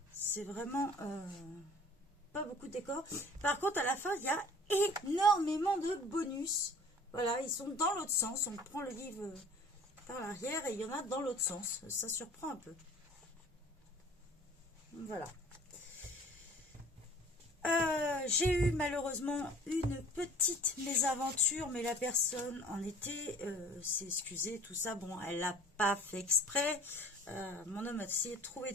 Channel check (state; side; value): normal; both; correlation 0.48